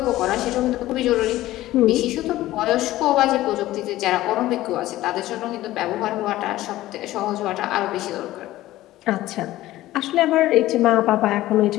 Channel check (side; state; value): right; quieter; 15.8 dB